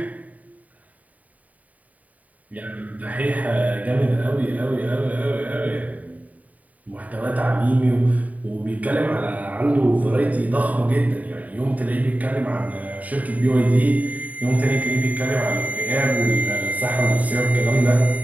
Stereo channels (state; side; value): late; left; 0.072 ms